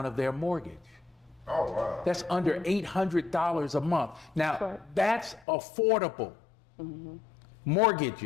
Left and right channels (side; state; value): right; drops out; at 5.5 s